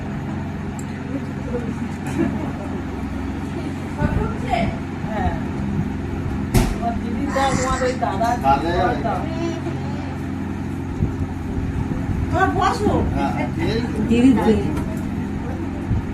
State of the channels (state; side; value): identical; both; correlation 1.00